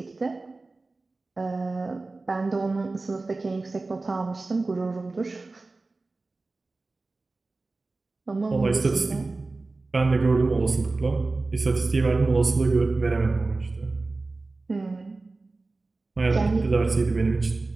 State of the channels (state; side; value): quieter; left; 3.4 dB